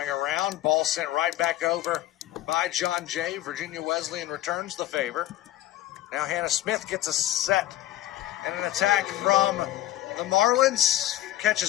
around, ball sent right back over by John Jay. Virginia Wesleyan returns the favor. Now Hannah Smith gets a set and an attack from the Marlins.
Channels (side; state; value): right; quieter; 14.3 dB